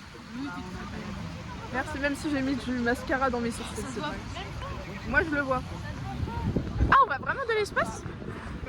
Merci, même si j'ai mis du mascara dans mes sourcils. C'est vrai. Moi je le vois. Ah, on va vraiment de l'espace?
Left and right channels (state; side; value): identical; both; correlation 1.00